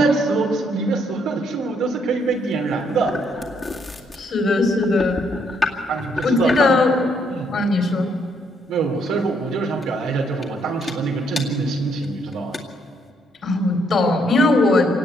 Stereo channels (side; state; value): both; normal; correlation 0.71